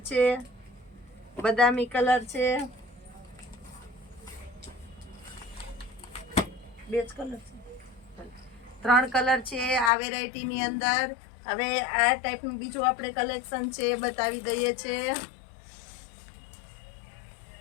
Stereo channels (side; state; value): right; drops out; at 9.9 s